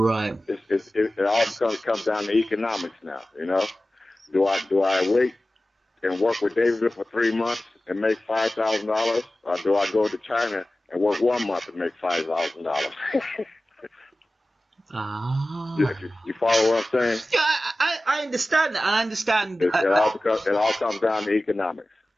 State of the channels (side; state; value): both; normal; correlation 0.96